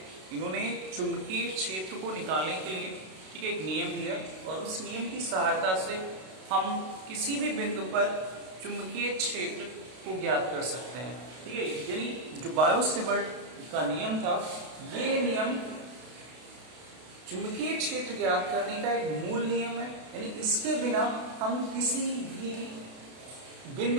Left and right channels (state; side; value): late; left; 32 ms